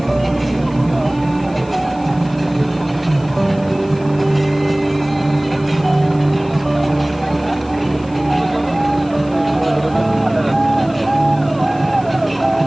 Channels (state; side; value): noise; left; hiss, 25 dB below the sound